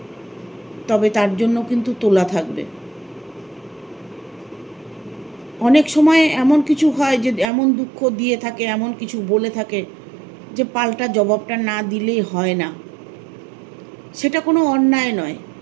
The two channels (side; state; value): left; drops out; at 7.5 s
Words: তবে তার জন্য কিন্তু তোলা থাকবে। অনেক সময় এমন কিছু হয় যে এমন দুঃখ দিয়ে থাকে, এমন কিছু বলে থাকে যে পাল্টা জবাবটা না দিলেই হয় না। সেটা কোনো অন্যায় নয়।